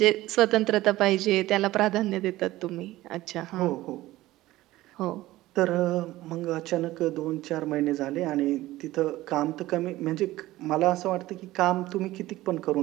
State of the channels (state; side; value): quieter; left; 16.8 dB